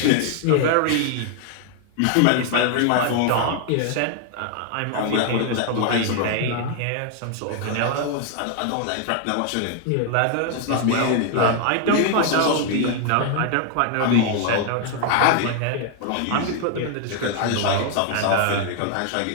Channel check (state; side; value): different; both; correlation 0.00